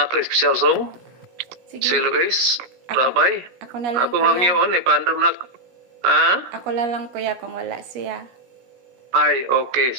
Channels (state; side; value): late; left; 16 ms